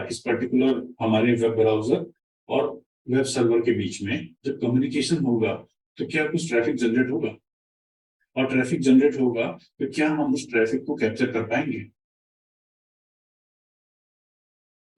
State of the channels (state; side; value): identical; both; correlation 1.00